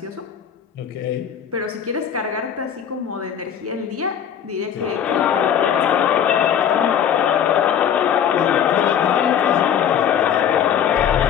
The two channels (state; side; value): quieter; right; 8.8 dB